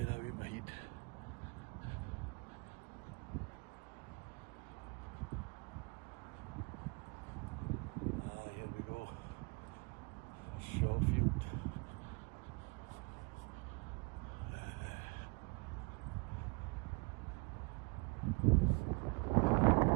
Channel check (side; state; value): left; quieter; 29.7 dB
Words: out of my head. Ah, here we go. Shawfield.